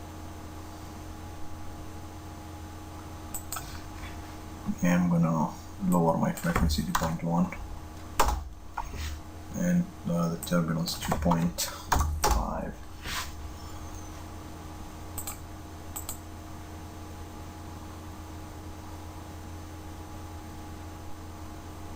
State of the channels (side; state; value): both; identical; correlation 1.00